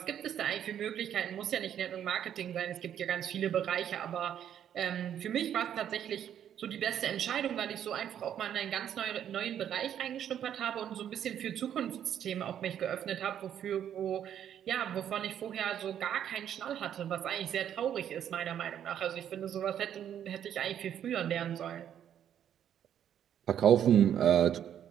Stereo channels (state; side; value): quieter; left; 9.8 dB